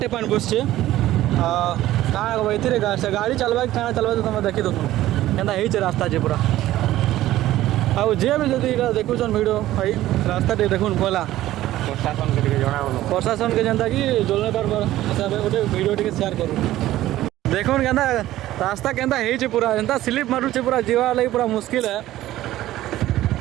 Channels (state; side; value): quieter; left; 14.8 dB